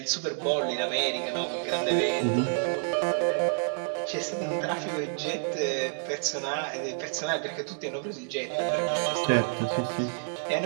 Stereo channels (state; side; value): silent; left; 59 dB below the other